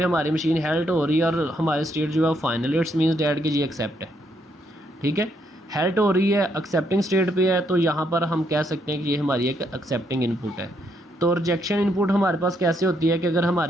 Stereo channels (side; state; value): both; normal; correlation 0.75